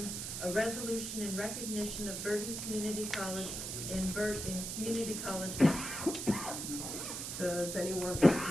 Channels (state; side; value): noise; right; hiss, 5 dB below the sound